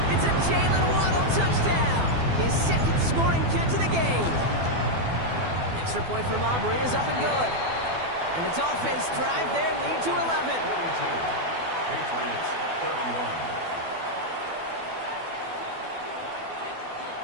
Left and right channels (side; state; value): left; late; 12 ms